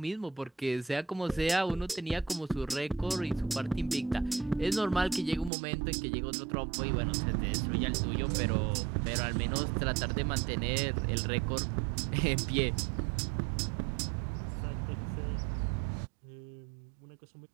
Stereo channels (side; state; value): left; drops out; at 5.5 s